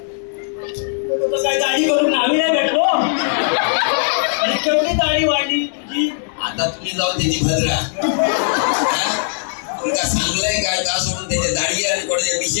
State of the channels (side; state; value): right; silent; digital silence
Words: काय दाढी करून आम्ही नाही भेटलो. आणि केवढी दाढी वाढली तुझी. आता तुम्ही जाऊन त्याची भद्रा तुमका सांगलंय काय का सोडून त्याच्या दाढी आणि कोणाचे